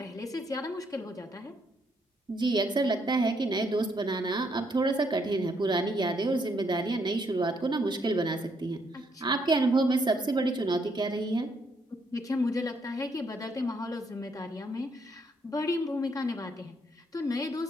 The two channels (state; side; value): normal; both; correlation 0.73